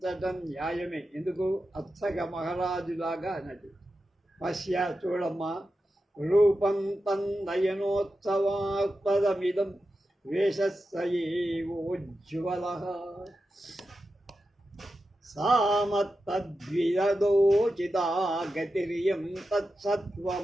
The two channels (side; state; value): both; normal; correlation 0.91